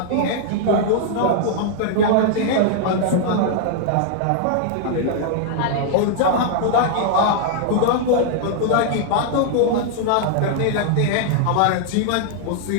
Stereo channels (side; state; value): both; different; correlation -0.01